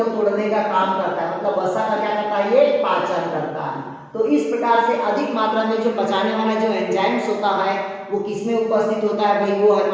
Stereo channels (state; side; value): identical; both; correlation 1.00